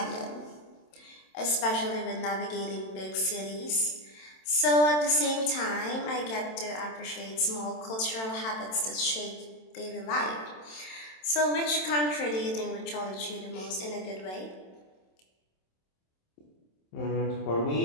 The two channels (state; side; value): late; right; 27 ms